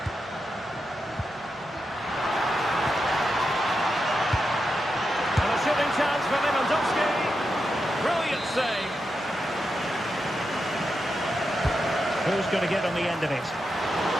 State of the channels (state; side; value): normal; both; correlation 0.87